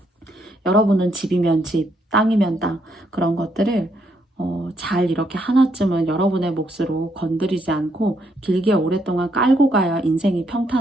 여러분은 집이면 집, 땅이면 땅 그런 것들을 잘 이렇게 하나쯤은 여러분의 몫으로 건드리지 않고 길게 오랫동안 깔고 가야 인생이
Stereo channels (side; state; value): both; normal; correlation 0.74